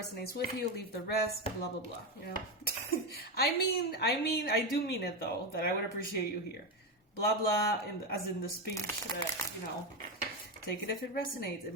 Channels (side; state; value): both; normal; correlation 0.12